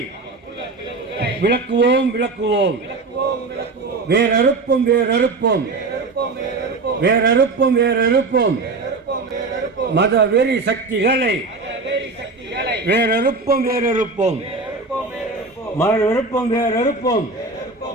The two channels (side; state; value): left; quieter; 3.7 dB